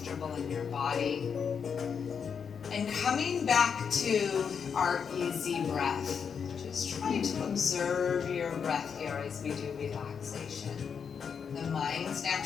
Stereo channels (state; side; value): quieter; right; 6.7 dB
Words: in your body. And coming back to our easy breath, just try to observe your breath here as we do relaxation. The mind's